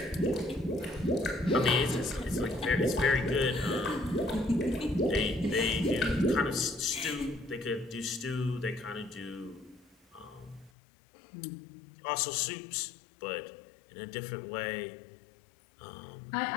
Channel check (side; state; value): right; drops out; at 10.7 s